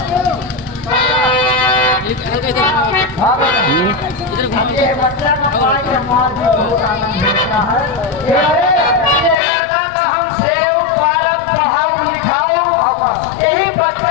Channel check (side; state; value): right; drops out; at 9.3 s